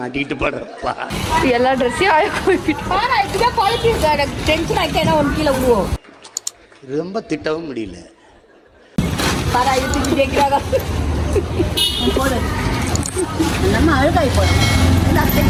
படுறப்பா. எல்லா ட்ரெஸ்ஸையும் டென்ஷன் ஆகிட்டா என்ன ஒன்று கீழே விடுவோம். ரொம்ப திட்டவும் முடியல. போடு நம்ம அழுகாய் போடும்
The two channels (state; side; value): identical; both; correlation 1.00